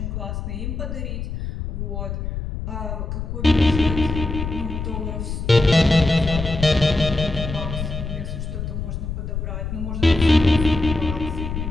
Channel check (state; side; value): noise; left; rumble, 5 dB below the sound